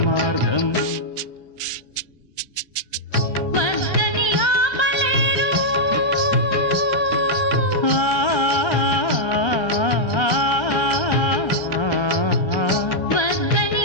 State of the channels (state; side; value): late; right; 1.2 ms